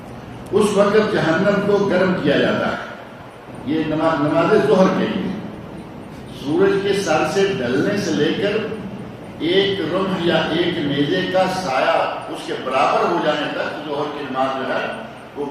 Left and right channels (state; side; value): identical; both; correlation 1.00